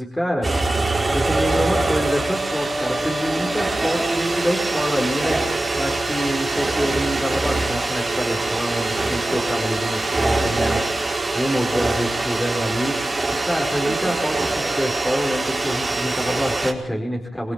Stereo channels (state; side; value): normal; both; correlation 0.95